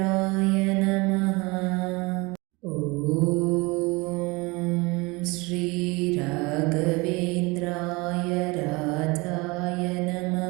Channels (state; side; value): quieter; left; 25.2 dB